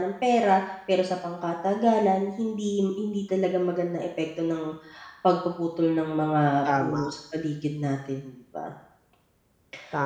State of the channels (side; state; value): both; identical; correlation 1.00